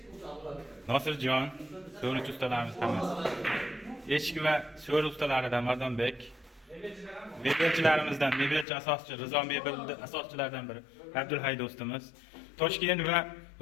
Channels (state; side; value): drops out; right; at 8.7 s